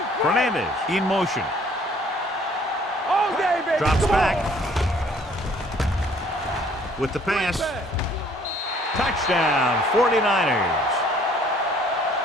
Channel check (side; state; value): both; normal; correlation 0.59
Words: Fernandez in motion. All day, baby. Drops Come back. on. With the pass. Touchdown, 49ers.